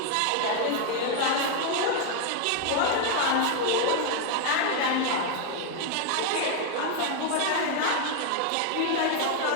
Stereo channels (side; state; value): both; different; correlation 0.01